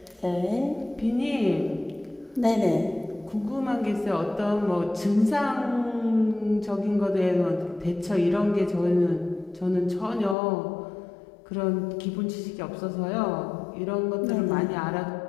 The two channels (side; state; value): right; drops out; at 10.4 s